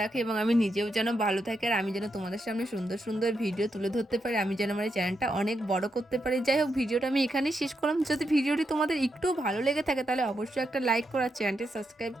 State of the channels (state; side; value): normal; both; correlation 0.83